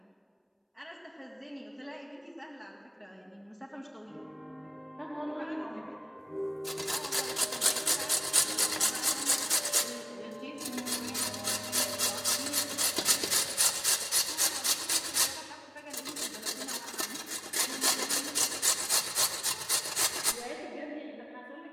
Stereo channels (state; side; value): identical; both; correlation 1.00